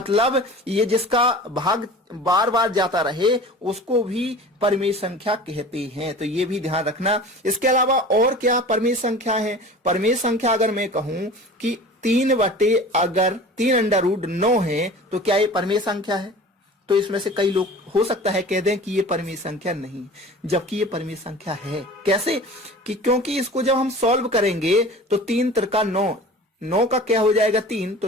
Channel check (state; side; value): normal; both; correlation 0.40